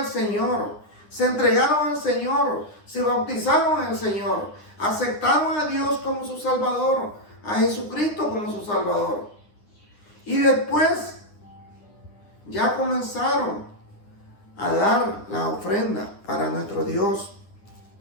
Señor. Se entregaron al Señor. Se bautizaron en el Señor. Aceptaron a Dios como su Salvador. A Jesucristo como su Salvador. Y después ya comenzaron a dar la ofrenda para nuestro Dios.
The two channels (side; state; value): right; late; 9.8 ms